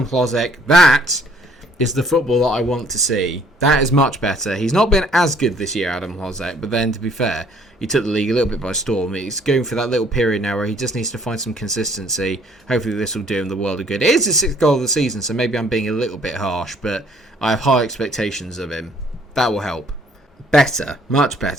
Klozek. That is the football that I want to see. That is much better. He's not been as good this year, Adam Klozek, but then, to be fair, he took the league a little bit by storm. He's going for that little period now where he just needs to find some consistency. Hopefully this will do him the world of good. It is his 6th goal of the season, so maybe I'm being a little bit harsh, but I have high expectations of him. That will help. Better, much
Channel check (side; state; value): both; normal; correlation 0.61